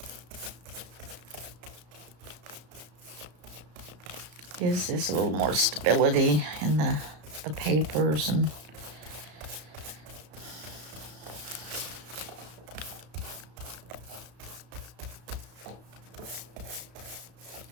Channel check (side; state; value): left; late; 34 ms